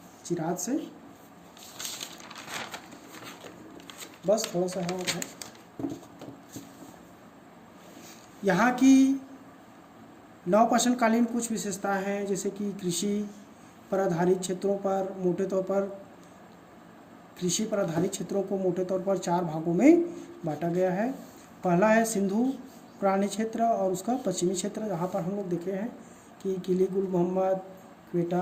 चिराग से। बस थोड़ा सा और है। यहाँ की नवपाषाणकालीन कुछ विशेषताएं हैं, जैसे कि कृषि पर आधारित क्षेत्रों पर मोटे तौर पर कृषि पर आधारित क्षेत्रों को मोटे तौर पर 4 भागों में बांटा गया है। पहला है सिंधु प्रणाली क्षेत्र और उसका पश्चिमी क्षेत्र, जहाँ पर हम लोग देखे हैं कि किली गुल मोहम्मद,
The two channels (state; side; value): identical; both; correlation 1.00